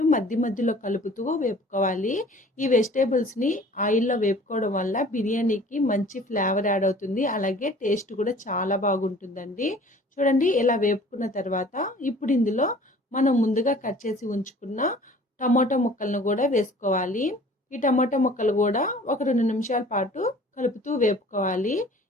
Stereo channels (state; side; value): normal; both; correlation 0.49